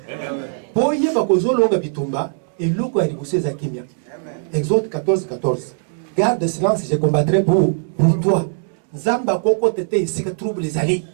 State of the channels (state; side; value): silent; left; digital silence